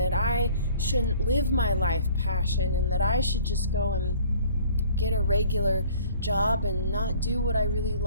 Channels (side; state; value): both; inverted; correlation -0.52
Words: I shouldn't live my life passion and that I should just go and get a regular job and not do what I really